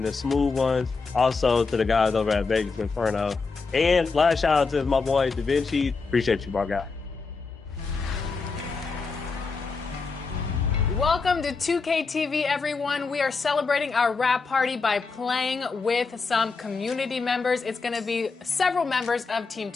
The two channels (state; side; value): quieter; right; 4.4 dB